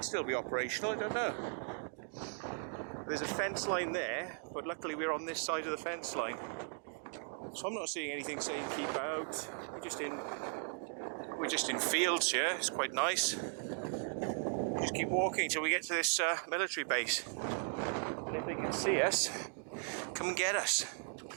still be operational, I don't know. There's a fence line there, but luckily we're on this side of the fence line. So I'm not seeing anything saying keep out. We're just in fields here, it's quite nice. We just keep walking till we get to this military base. And if they can see us, come and get us.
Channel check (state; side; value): silent; left; 53 dB below the other